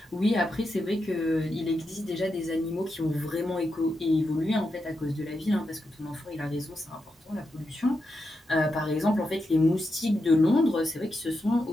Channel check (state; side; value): normal; both; correlation 0.86